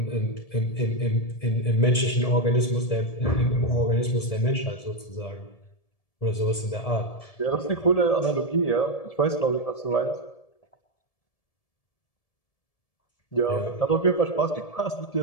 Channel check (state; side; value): late; right; 1.7 ms